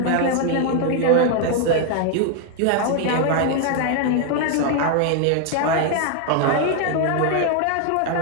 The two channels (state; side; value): different; both; correlation 0.00